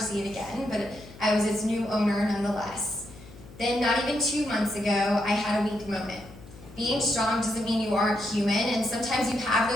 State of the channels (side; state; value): left; noise; hum, 19 dB below the sound